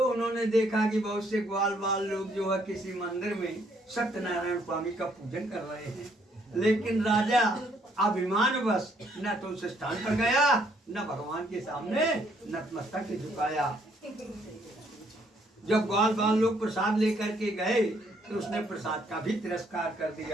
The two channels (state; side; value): normal; both; correlation 0.68